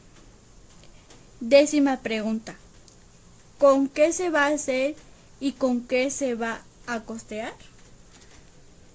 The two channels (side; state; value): both; identical; correlation 1.00